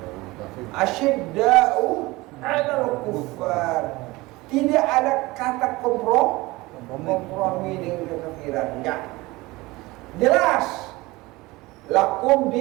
Asyidda'u alal kuffar. Tidak ada kata kompromi dengan kekafiran. Enggak. Jelas. Lakum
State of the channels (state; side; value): quieter; left; 21.1 dB